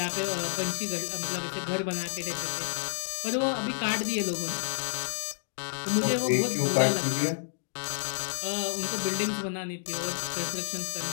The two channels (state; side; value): silent; right; digital silence